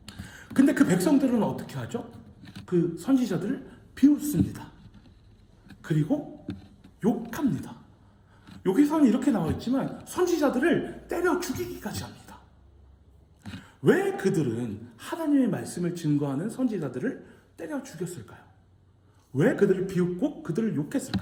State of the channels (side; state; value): both; identical; correlation 1.00